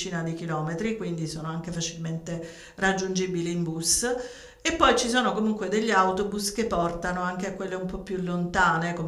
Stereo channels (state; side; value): identical; both; correlation 1.00